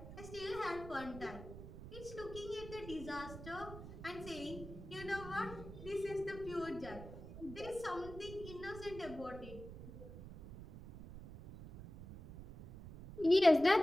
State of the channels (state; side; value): noise; right; rumble, 13 dB below the sound